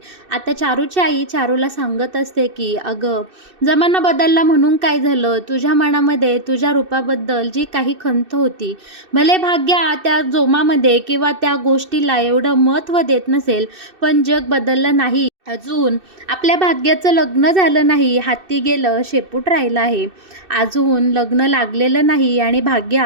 आता चारूची आई चारूला सांगत असते की अगं, जमाना बदलला म्हणून काय झालं, तुझ्या मनामध्ये तुझ्या रूपाबद्दल जी काही खंत होती, भले भाग्या त्या जोमामध्ये किंवा त्या गोष्टीला एवढं महत्त्व देत नसेल, पण जग बदललं नाही. अजून आपल्या भाग्याचं लग्न झालं नाही, हाती गेलं शेपूट राहिलं आहे. अजून लग्न लागलेलं नाही आणि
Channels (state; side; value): late; left; 2.6 ms